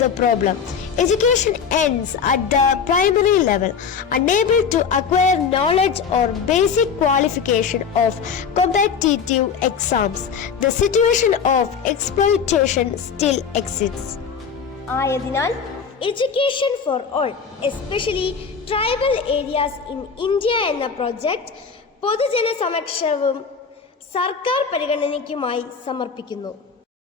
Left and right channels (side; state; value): right; quieter; 6.4 dB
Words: problem. Education ends at the primary level, unable to acquire knowledge or basic qualification of competitive exams. The situation of exploitation still exists. ആയതിനാൽ education for all especially tribal areas in India എന്ന project പൊതുജന സമക്ഷവും സർക്കാർ പരിഗണനയ്ക്കുമായി സമർപ്പിക്കുന്നു.